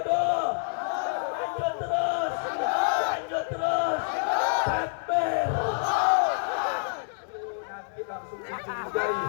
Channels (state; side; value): silent; right; digital silence